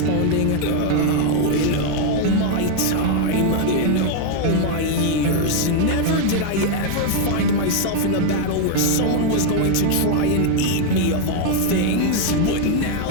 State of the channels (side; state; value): both; different; correlation 0.00